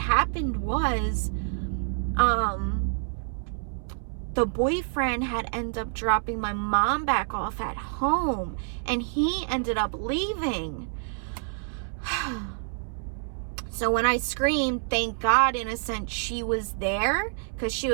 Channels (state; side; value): silent; left; 60 dB below the other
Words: was, the boyfriend had ended up dropping my mom back off at home, and he ended up leaving. So when I screamed, thank God, in a sense, she was there, because she